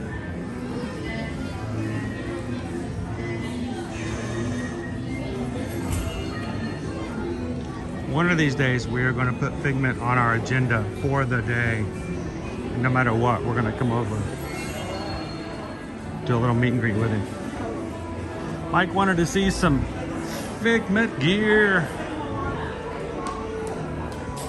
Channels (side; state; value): both; identical; correlation 1.00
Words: One of these days, we are going to put Figment on our agenda for the day. No matter what, we're going to come over. Do a little meet and greet with him. Mike wanted to see some Figment gear.